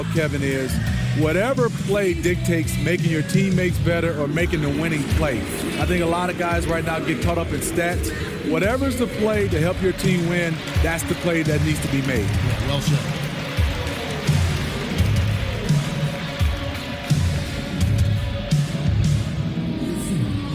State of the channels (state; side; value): identical; both; correlation 1.00